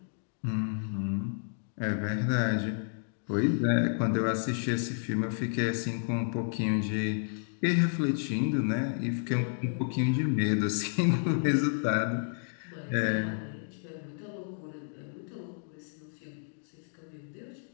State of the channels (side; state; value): right; silent; digital silence